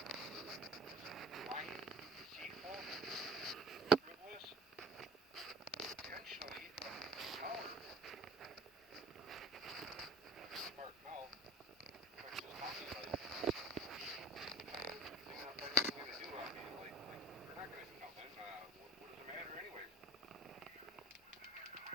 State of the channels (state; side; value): normal; both; correlation 0.41